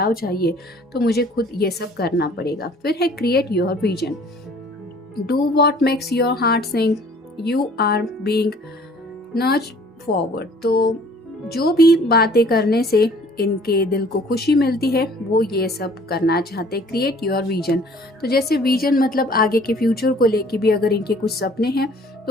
चाहिए तो मुझे खुद ये सब करना पड़ेगा। फिर है create your vision, do what makes your heart sing, you are being nurtured forward. तो जो भी बातें करने से इनके दिल को खुशी मिलती है वो ये सब करना चाहते। क्रिएट योर विजन, तो जैसे विजन मतलब आगे के फ्यूचर को लेके भी अगर इनके कुछ सपने हैं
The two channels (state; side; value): normal; both; correlation 0.54